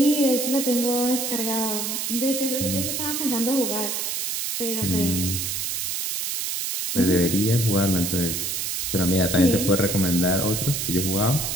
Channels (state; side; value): noise; right; hiss, 2 dB below the sound